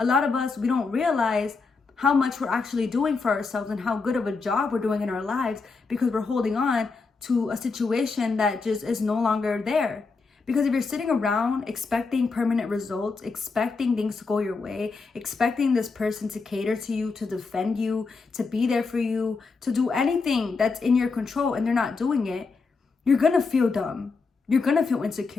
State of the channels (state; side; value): quieter; right; 4.4 dB